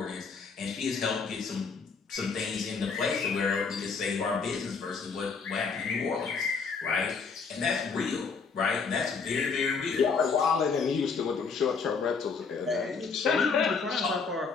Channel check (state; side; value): quieter; right; 5.2 dB